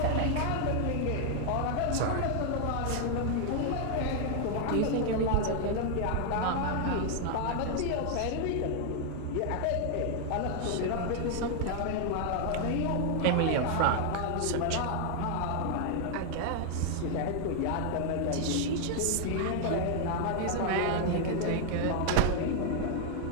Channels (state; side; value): different; both; correlation 0.00